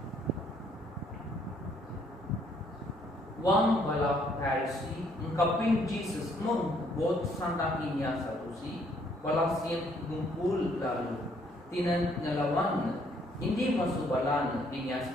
Wang balap Pharisee ungkapin Jesus mengbot santak inya salusi Balasian gumpul lalu tinan ngelawan hindi masuk balan dinya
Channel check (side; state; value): both; normal; correlation 0.66